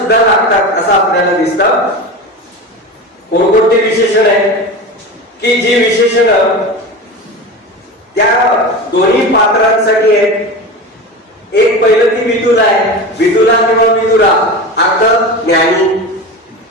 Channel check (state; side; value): normal; both; correlation 0.27